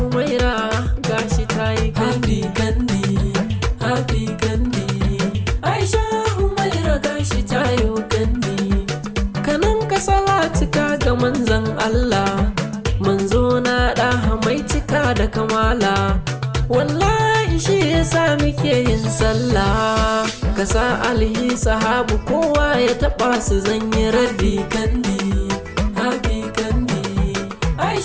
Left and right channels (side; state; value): both; identical; correlation 1.00